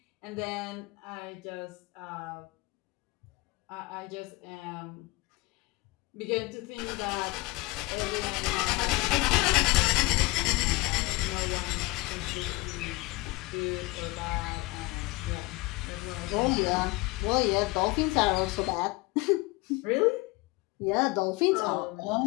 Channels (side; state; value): right; quieter; 22.0 dB